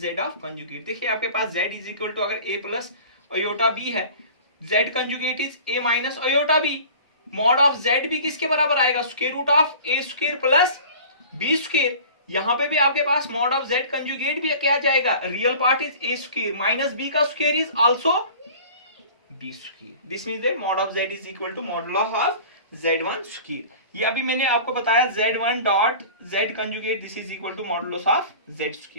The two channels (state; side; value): inverted; both; correlation -0.43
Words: of conjugate. देखिए आपके पास z is equal to अगर a plus iota b है, z conjugate is a minus iota b, mod of z भी किसके बराबर आएगा, square root of a square plus b square. यहां पे भी आपके पास मॉड ऑफ z कंजुगेट भी क्या जाएगा, real part is a square minus b का square is also b square. This means that mod of z is equal to modulus of z1 square. ये अभी मैंने आपको बताया z1 dot z conjugate this is equal to modulus of z